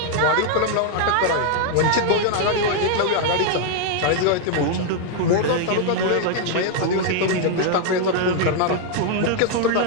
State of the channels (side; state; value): both; different; correlation 0.00